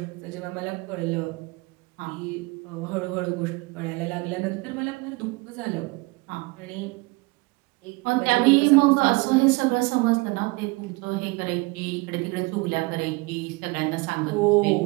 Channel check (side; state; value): left; quieter; 25.3 dB